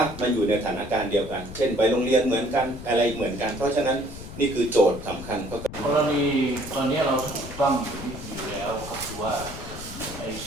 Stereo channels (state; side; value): noise; left; rumble, 12 dB below the sound